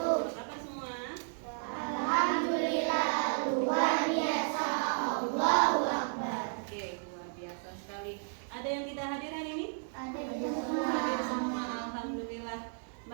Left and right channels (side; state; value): left; silent; 56 dB below the other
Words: Apa kabar semua? Alhamdulillah, luar biasa. Allahu Akbar. Oke, luar biasa sekali. Ada yang tidak hadir hari ini? Ada Hadir semua, alhamdulillah.